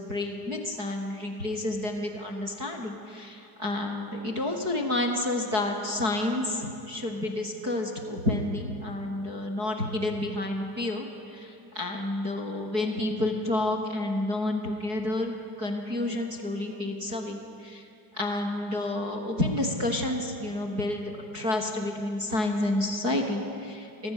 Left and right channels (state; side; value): late; left; 4.7 ms